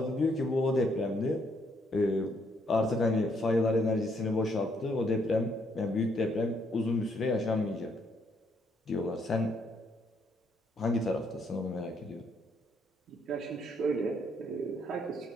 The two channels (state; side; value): normal; both; correlation 0.71